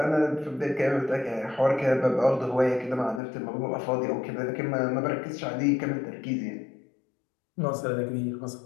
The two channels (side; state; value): right; drops out; at 3.2 s